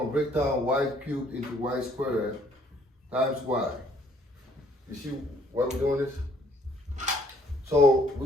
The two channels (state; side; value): normal; both; correlation 0.63